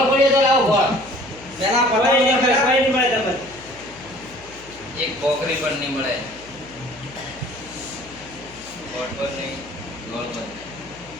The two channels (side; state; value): left; noise; hum, 22 dB below the sound